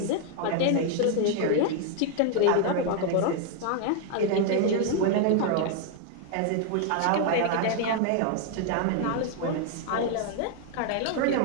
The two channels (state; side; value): different; both; correlation 0.00